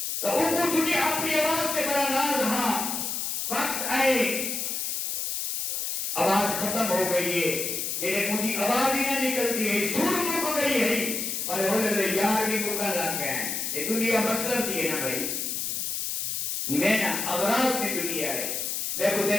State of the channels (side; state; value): left; noise; hiss, 2 dB below the sound